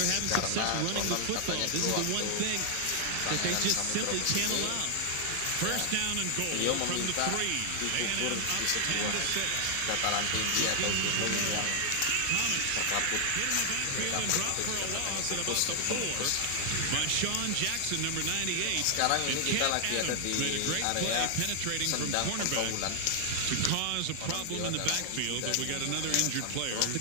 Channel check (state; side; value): different; both; correlation 0.00